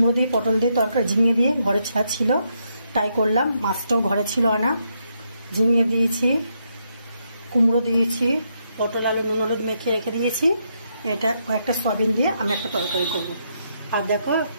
দিয়ে পটল দিয়ে তরকারি ঝিঙে দিয়ে ঘরে ছাড় ছিল তাই করলাম। মাছটাও ঘরে ছিল আনা, ঝিঙে দিয়েছি, কুমড়ো দিয়েছি, পটল আলু নুন হলুদ মেখে রেখে দিয়েছি। এটা কয়েকটা সয়াবিন দিয়ে আমি একটা তরকারি করব। আর দেখো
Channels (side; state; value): both; inverted; correlation -0.78